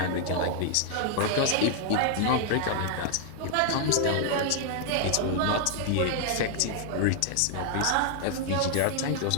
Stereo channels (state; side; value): different; both; correlation 0.00